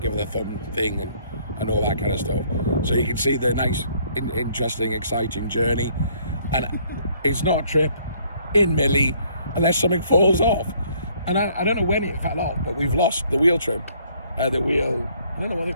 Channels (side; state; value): both; inverted; correlation -0.63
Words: her the thumb thing and all that kind of stuff. So you can see the nice, interesting, exciting journey. And it's not a trip in Millie unless something falls off. And I don't know when it fell off, but we've lost the wheel trim. The wheel, I don't know